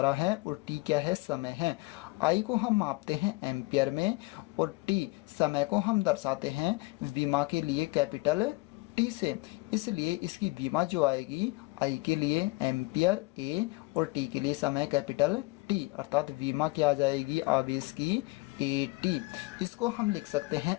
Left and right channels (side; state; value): right; quieter; 24.5 dB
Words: है और T क्या है, समय है। I को हम मापते हैं एम्पियर में और T समय को हम दर्शाते हैं विमा के लिए कैपिटल T से। इसलिए इसकी विमा जो आएगी I के लिए एम्पियर A और T के लिए समय कैपिटल T, अर्थात विमा क्या आ जाएगी आवेश की AT। इसको हम लिख सकते